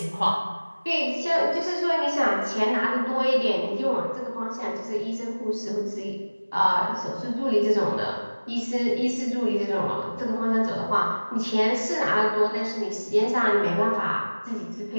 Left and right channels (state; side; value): inverted; both; correlation -1.00